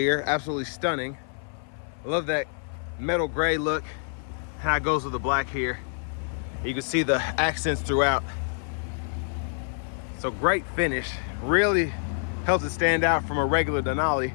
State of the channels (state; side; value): silent; right; 57 dB below the other